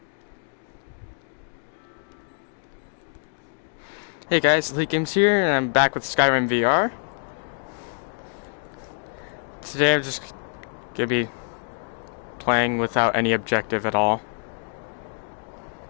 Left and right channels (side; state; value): right; silent; digital silence